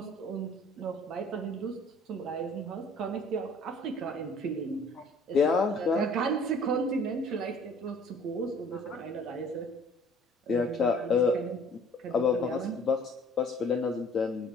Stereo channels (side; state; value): both; normal; correlation 0.53